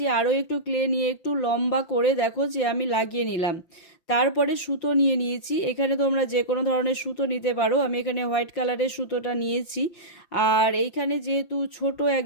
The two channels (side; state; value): right; late; 5.9 ms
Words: আরও একটু ক্লে নিয়ে একটু লম্বা করে দেখো যে আমি লাগিয়ে নিলাম। তারপরে সুতো নিয়ে নিয়েছি, এখানে তোমরা যে কোনো ধরনের সুতো নিতে পারো, আমি এখানে হোয়াইট কালারের সুতোটা নিয়েছি। আর এইখানে যেহেতু ছোট